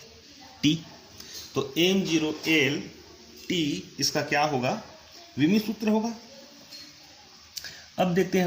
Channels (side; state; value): both; identical; correlation 1.00